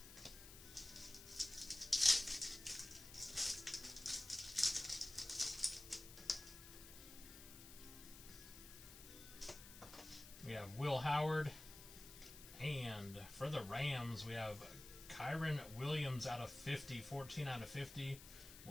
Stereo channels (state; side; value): noise; left; hiss, 15 dB below the sound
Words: We have Will Howard, and for the Rams, we have Kyron Williams out of 50, 14 out of 50.